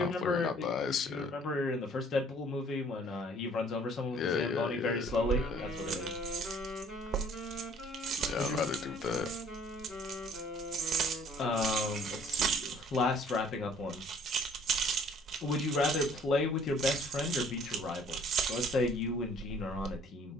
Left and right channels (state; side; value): normal; both; correlation 0.56